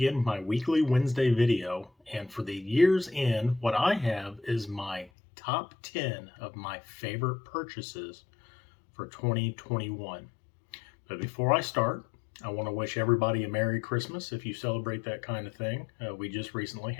with my weekly Wednesday video, and for the year's end, what I have is my top 10 of my favorite purchases for 2021. But before I start, I want to wish everybody a Merry Christmas if you celebrate that kind of thing. We just recently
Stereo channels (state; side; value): drops out; right; at 5.1 s